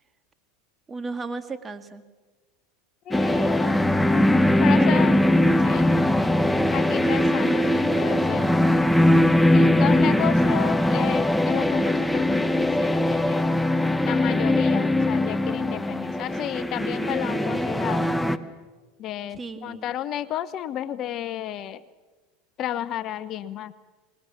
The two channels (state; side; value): normal; both; correlation 0.91